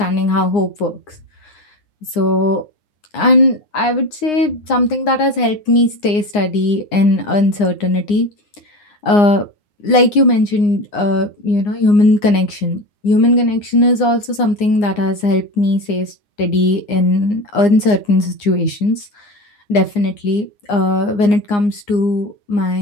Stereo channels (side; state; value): right; late; 9.7 ms